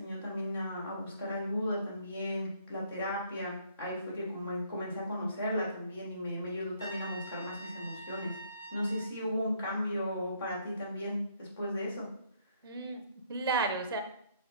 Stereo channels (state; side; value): inverted; both; correlation -0.66